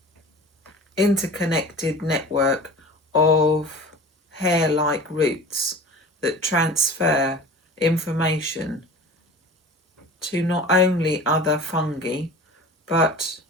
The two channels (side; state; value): both; normal; correlation 0.38